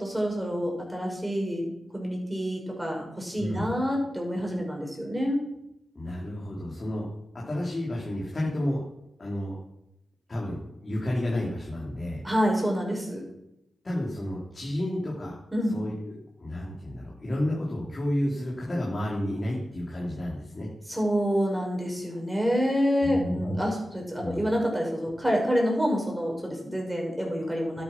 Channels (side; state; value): both; normal; correlation 0.94